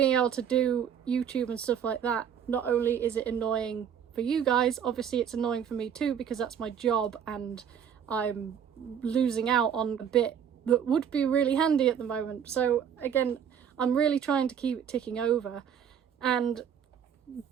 able to do YouTube and stuff like that, not only is it annoying for you guys, obviously it's annoying for me too, because that's my job and I'm losing out on a bit that would be really handy at the moment. So again, I'm really trying to keep it ticking over, and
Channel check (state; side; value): quieter; left; 8.2 dB